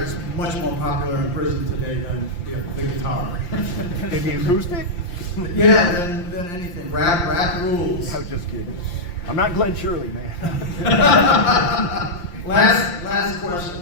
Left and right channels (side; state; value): right; late; 5.8 ms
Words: much more popular in prison today than the guitar. Maybe acoustic? Yeah, than anything. Rap rules. I was just kidding. I'm not Glenn Shirley, man. Last